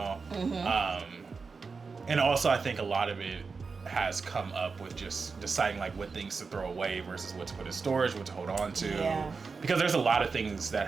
And also, I think a lot of it has come up with just deciding like what things to throw away versus what to put in storage, what to hold on to. Yeah. Because there's a lot of things that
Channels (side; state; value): left; quieter; 4.7 dB